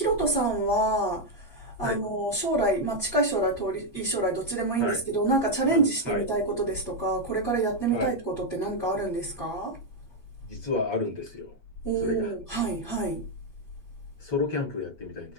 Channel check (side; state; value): right; late; 8.5 ms